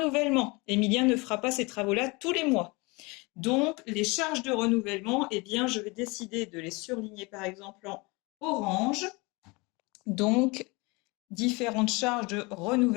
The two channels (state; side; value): quieter; right; 26.3 dB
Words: Emilien ne fera pas ces travaux-là tous les mois. Donc, les charges de renouvellement, eh bien, je vais décider de les surligner par exemple en orange. Donc, différentes charges de